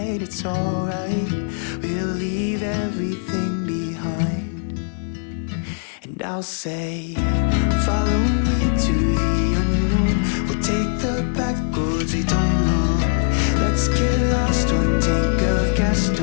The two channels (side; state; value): right; silent; 61 dB below the other